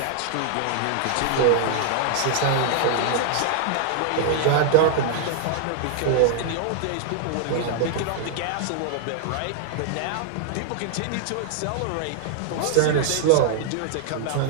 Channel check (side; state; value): both; different; correlation -0.01